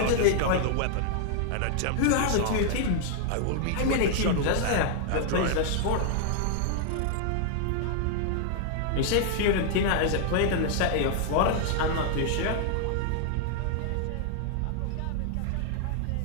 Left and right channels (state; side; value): different; both; correlation 0.00